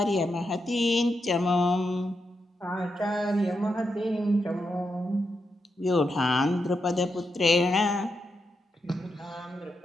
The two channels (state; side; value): normal; both; correlation 0.84